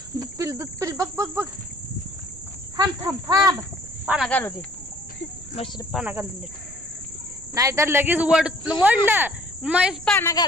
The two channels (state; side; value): noise; right; rumble, 18 dB below the sound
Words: पिल बघ बघ बघ थांब थांब थांब पाना घालू दे मशीन पाना घालून दे नाहीतर लगेच वडलं म्हैस पाना